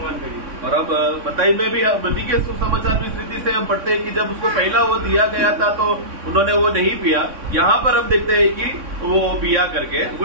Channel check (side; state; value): left; late; 3.6 ms